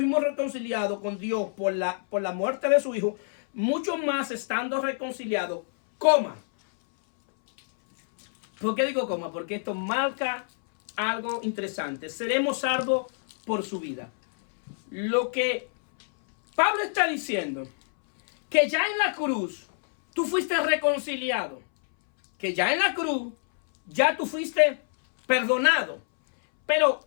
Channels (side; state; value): right; silent; 61 dB below the other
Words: reconciliados con Dios por la muerte de su Hijo, mucho más estando reconciliados, coma. ¿Por qué digo coma? Porque esto marca algo interesante. Seremos salvos por su vida. Lo que Pablo está diciendo, que ya en la cruz tú fuiste reconciliado, que ya en la cruz ya tú fuiste perdonado, pero